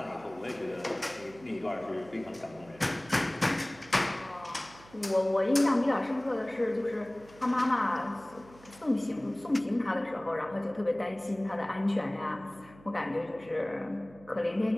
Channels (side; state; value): right; noise; hum, 23 dB below the sound